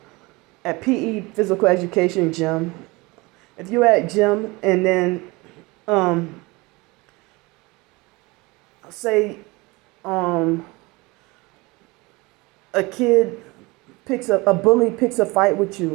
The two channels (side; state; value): left; quieter; 23.9 dB